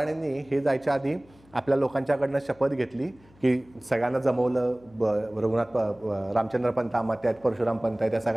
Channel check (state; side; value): noise; left; hum, 28 dB below the sound